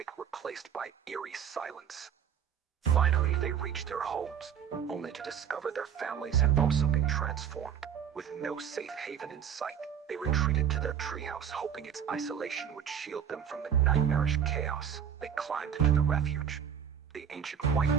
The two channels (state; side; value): quieter; left; 8.4 dB